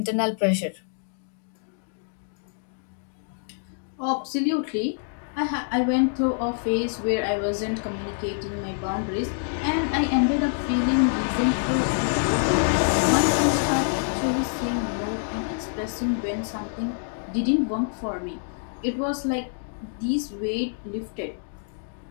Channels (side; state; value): right; silent; digital silence